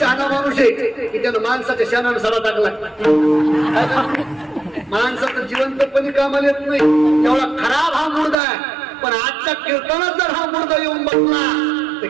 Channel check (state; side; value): drops out; left; at 8.3 s